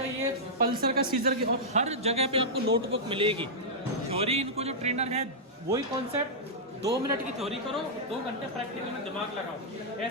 ये पल्सर का, सीजर की, और हर जगह पे आपको नोटबुक मिलेगी। थ्योरी इनको जो ट्रेनर है वही कॉन्सेप्ट, 2 मिनट की थ्योरी करो, 2 घंटे प्रैक्टिकल में दिमाग लगाओ।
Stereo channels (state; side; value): normal; both; correlation -0.10